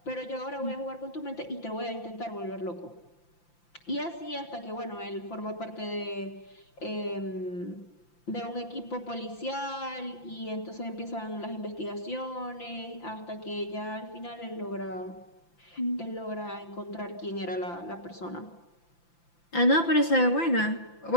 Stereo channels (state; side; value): late; right; 5.9 ms